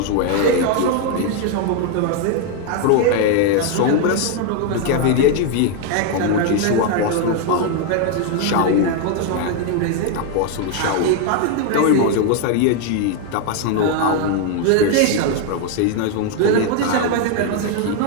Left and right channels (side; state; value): both; different; correlation 0.01